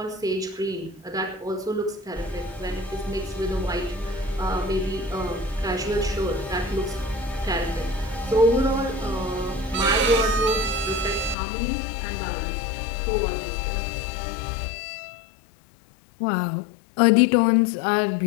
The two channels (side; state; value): right; drops out; at 11.4 s